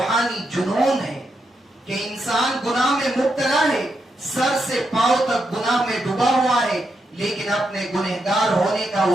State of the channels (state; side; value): normal; both; correlation 0.82